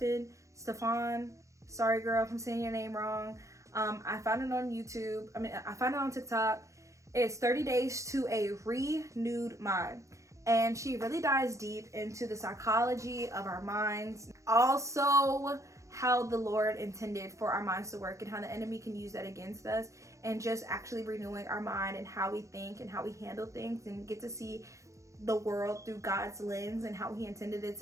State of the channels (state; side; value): late; left; 0.15 ms